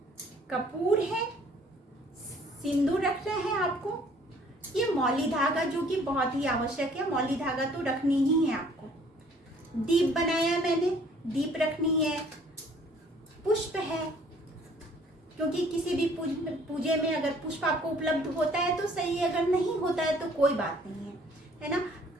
कपूर है, सिंदूर रखना है आपको। ये मौली धागा जो कि बहुत ही आवश्यक है, मौली धागा तो रखनी ही है आपको। दीप बनाया मैंने, दीप रखनी है। पुष्प है, क्योंकि किसी भी पूजे में अगर पुष्प आपको उपलब्ध होता है तो सही है, अगर नहीं होता है तो कोई बात नहीं है ना।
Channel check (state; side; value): normal; both; correlation 0.57